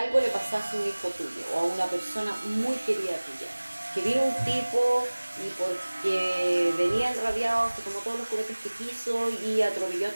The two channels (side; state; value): both; inverted; correlation -1.00